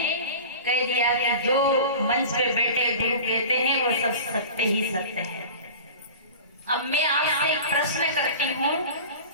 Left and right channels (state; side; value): inverted; both; correlation -0.35